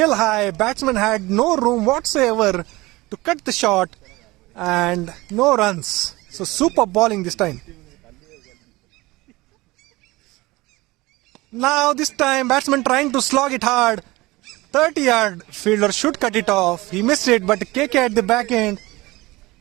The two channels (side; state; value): left; quieter; 20.9 dB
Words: high. Batsman had no room whatsoever to cut the shot, and no runs. So super bowling this time. Now this time batsman trying to slog it hard. 30-yard fielder should cut it off. He missed it, but KK at the back end